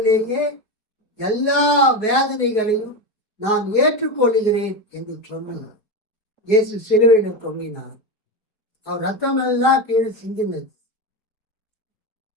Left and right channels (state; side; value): late; right; 4.8 ms